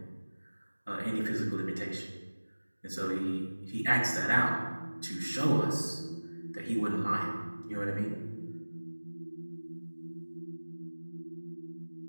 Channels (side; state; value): both; inverted; correlation -1.00